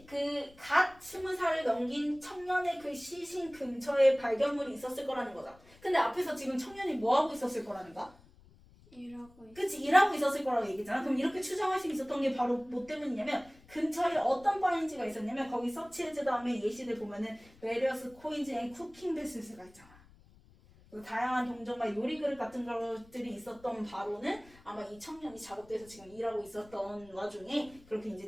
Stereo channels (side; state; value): left; noise; rumble, 25 dB below the sound